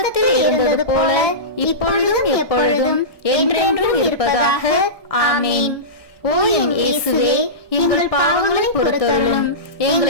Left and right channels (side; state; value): right; late; 1.2 ms